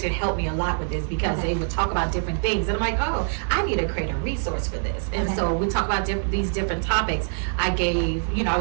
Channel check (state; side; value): silent; left; digital silence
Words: helped me a lot with this because they would talk about different things, and I'm like, oh, I need to create a resource for this. And so we talk about these different topics. I gave, I